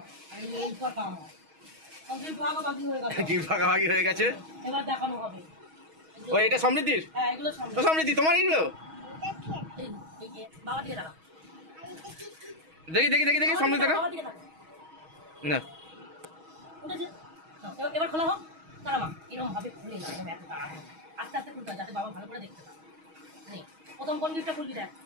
আর এই কটা আমার। কমপ্লিট ভাগাভাগি হয়ে গেছে। গিফট ভাগাভাগি হয়ে গেছে, এবার দেখানো হবে। ও এটা সমৃদ্ধির? হ্যাঁ এগুলো তো সমৃদ্ধি তোমার এগুলো এই যে বাবা দিকে দাঁড়াও। দেখি দেখি দেখি দেখি সমৃদ্ধি দেখো না। উঠেছে, এবার খোলা হোক। দাঁড়া মা, এরকম ভাবে খুলে না, এরকম এত তাড়া আস্তে আস্তে খুলতে হয় যাতে বাবা ভালো করে দেখতে পায়। নেই, প্রথম কোন গিফটটা খুলবি দেখ?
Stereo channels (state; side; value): late; left; 6.3 ms